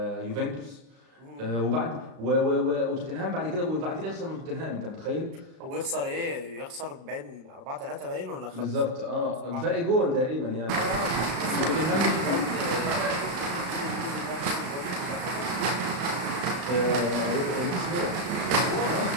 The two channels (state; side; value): late; left; 35 ms